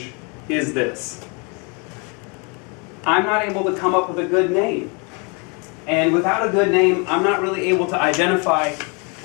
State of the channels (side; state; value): right; quieter; 33.2 dB